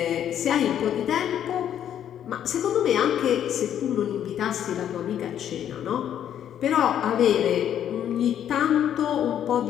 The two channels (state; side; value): quieter; right; 10.0 dB